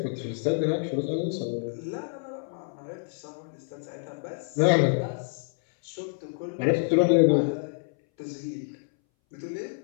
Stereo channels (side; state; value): right; silent; 59 dB below the other